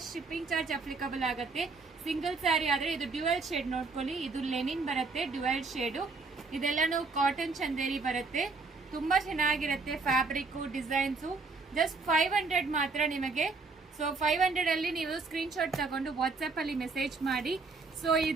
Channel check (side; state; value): left; quieter; 4.1 dB